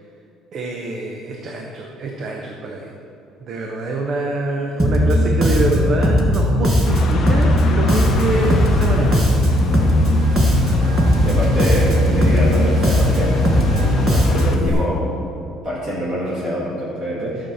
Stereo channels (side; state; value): both; normal; correlation 0.71